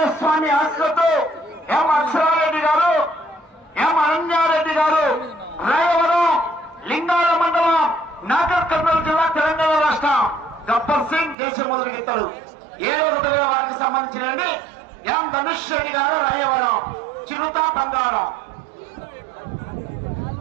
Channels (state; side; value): drops out; left; at 11.4 s